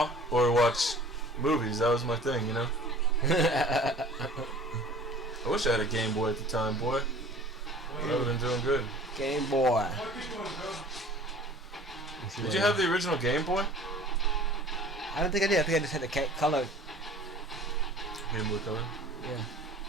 or watch movies. That was my thing, you know. I wish I had a Game Boy at the time, boy. I would have been doing good. Game Boy. Did you have the original Game Boy? I don't think I did. I think I just had the color. Game Boy Color. Yeah.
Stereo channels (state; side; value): normal; both; correlation 0.46